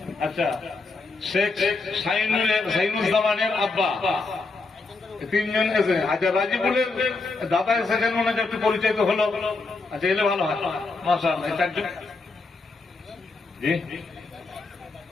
আচ্ছা শেখ শাহিনুজ্জামানের আব্বা, তিনজন এসে। আচ্ছা রাজিবুলের দাদা এসেছেন, মনে হচ্ছে একটু পরিচয় তো হলো। আচ্ছা এলে ভালো হয়, মাশাআল্লাহ। চারজন, জি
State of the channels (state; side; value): quieter; right; 3.8 dB